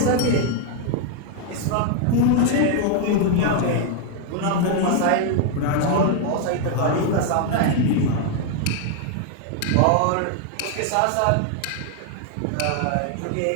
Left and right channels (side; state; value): both; different; correlation 0.00